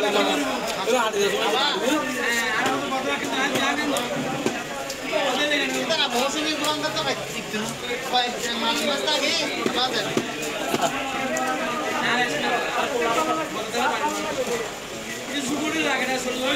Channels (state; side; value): identical; both; correlation 1.00